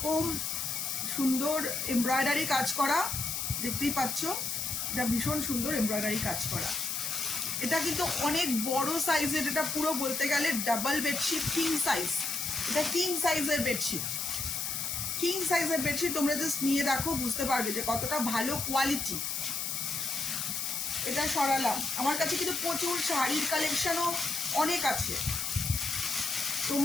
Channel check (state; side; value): noise; left; hiss, 2 dB below the sound